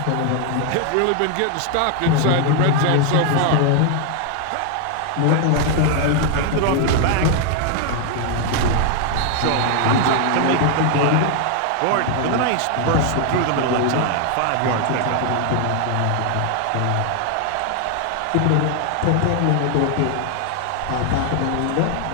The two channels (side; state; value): both; different; correlation 0.00